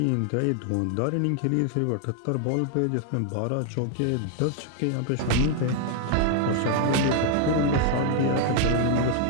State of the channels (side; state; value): both; different; correlation 0.00